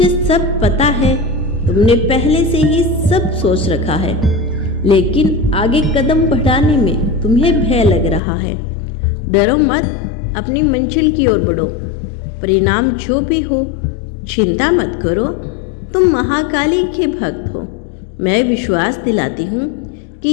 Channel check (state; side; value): drops out; right; at 8.2 s